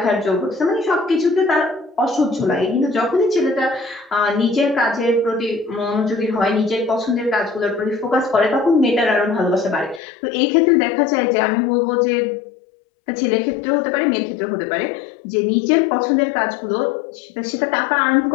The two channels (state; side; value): drops out; right; at 10.0 s